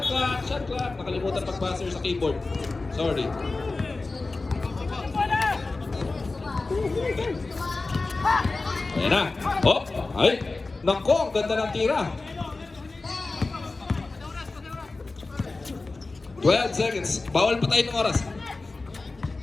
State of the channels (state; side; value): quieter; right; 3.5 dB